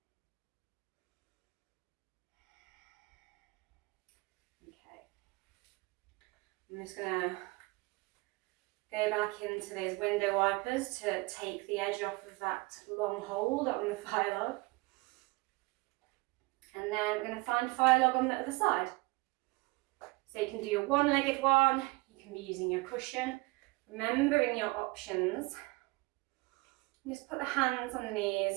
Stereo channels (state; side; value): quieter; left; 24.5 dB